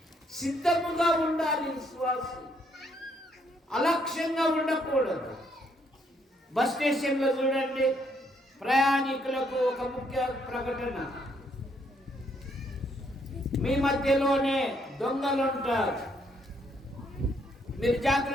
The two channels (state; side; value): normal; both; correlation 0.71